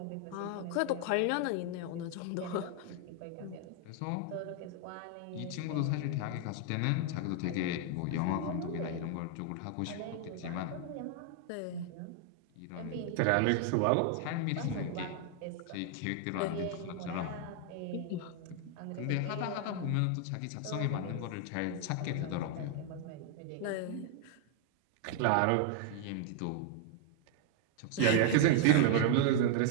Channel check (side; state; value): both; different; correlation 0.00